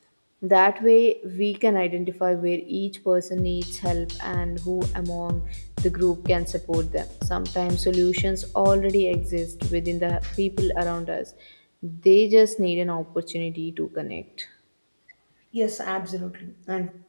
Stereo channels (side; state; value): both; inverted; correlation -1.00